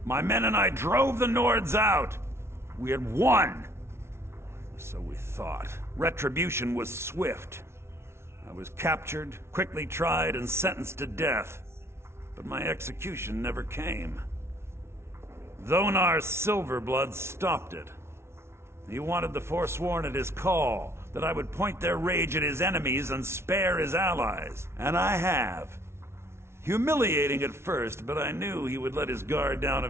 My men and I drove the Nords out. We had won. So we thought. Retribution was swift. I was captured, quickly tried, and sentenced to death. But my execution never came. Dhonar's Silverblood stopped it. He wanted the Forsworn at his call, that I would point their rage at his enemies and spare his allies. And I have. Humiliating at first, but I knew he would let his guard down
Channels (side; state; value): left; late; 0.12 ms